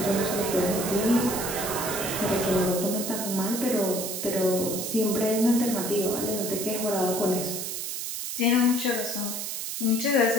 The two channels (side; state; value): right; noise; hiss, 4 dB below the sound